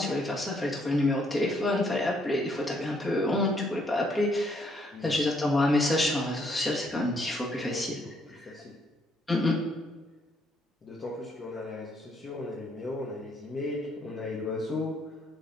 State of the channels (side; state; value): both; normal; correlation 0.70